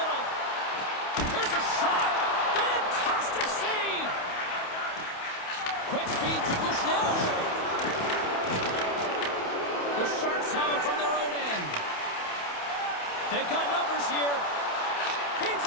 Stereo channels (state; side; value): late; right; 28 ms